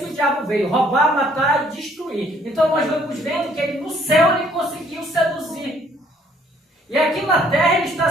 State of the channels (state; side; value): normal; both; correlation 0.63